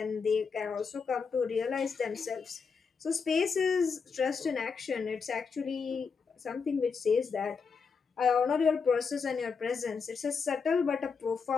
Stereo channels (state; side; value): quieter; right; 5.5 dB